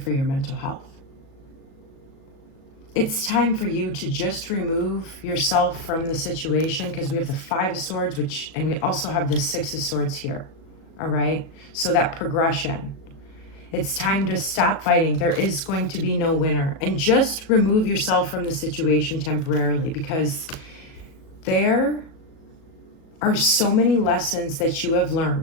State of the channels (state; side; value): late; right; 37 ms